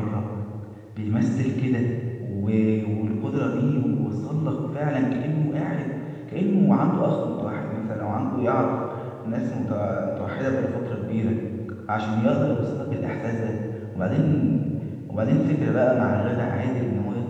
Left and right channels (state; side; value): identical; both; correlation 1.00